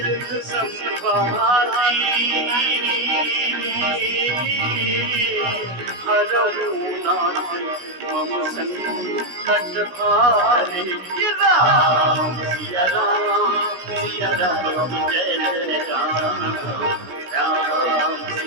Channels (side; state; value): left; late; 16 ms